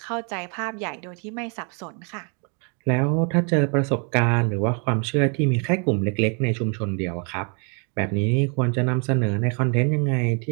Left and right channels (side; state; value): left; quieter; 37.3 dB